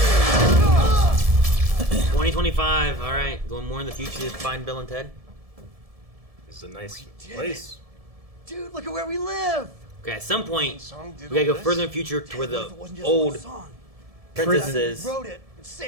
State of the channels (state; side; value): late; left; 1.7 ms